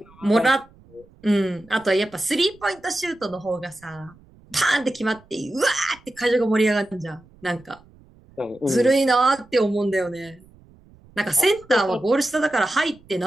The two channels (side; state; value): right; noise; rumble, 27 dB below the sound